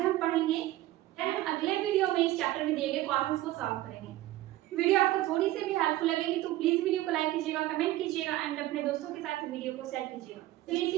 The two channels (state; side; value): quieter; left; 15.7 dB